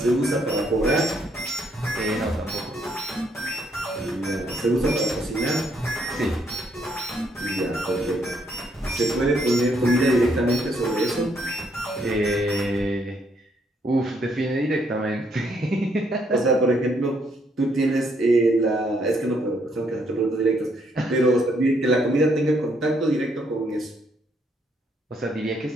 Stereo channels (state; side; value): normal; both; correlation 0.71